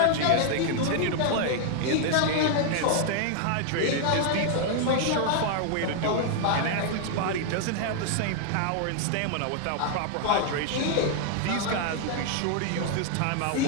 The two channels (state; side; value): different; both; correlation 0.00